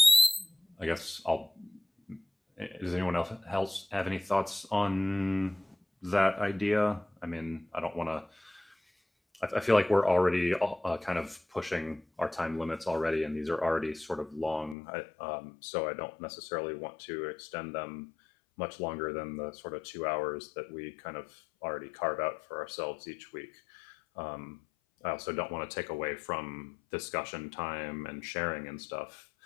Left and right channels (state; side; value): drops out; right; at 14.8 s